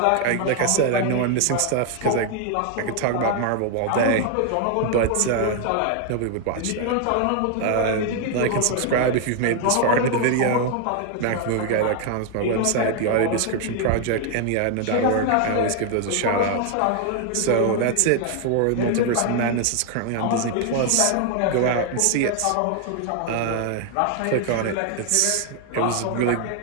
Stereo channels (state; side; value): different; both; correlation 0.00